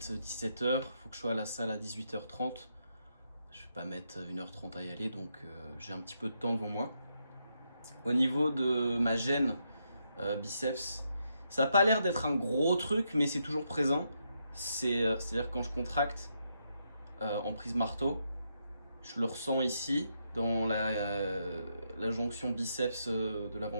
17h, il faut que je sois à la salle à 18h30. Je vais pas mettre 1h30 à y aller, donc j'ai un petit peu de temps devant moi. Au niveau de ma gêne biceps, ça n'a pas l'air d'être un gros truc, mais c'est toujours présent. C'est-à-dire quand je contracte en prise marteau, je le ressens ici, dans la jonction biceps de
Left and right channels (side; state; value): both; inverted; correlation -0.80